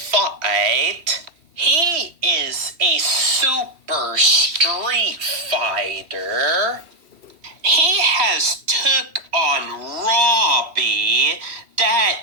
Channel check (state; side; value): late; left; 2.8 ms